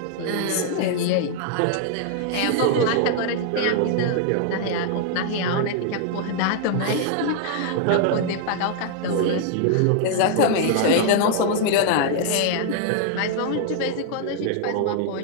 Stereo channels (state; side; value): different; both; correlation 0.00